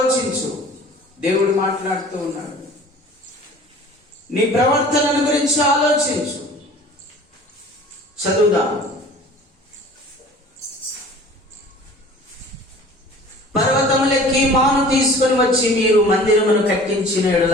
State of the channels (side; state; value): both; normal; correlation 0.45